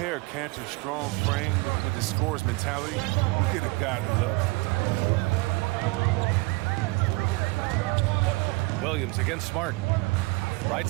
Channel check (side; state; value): left; quieter; 25.3 dB